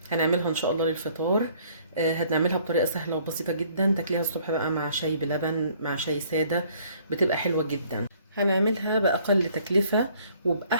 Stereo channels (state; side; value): inverted; both; correlation -0.60